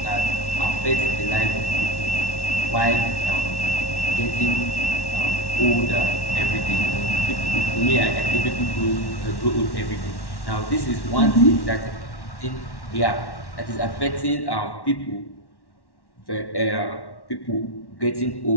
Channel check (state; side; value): late; right; 1.1 ms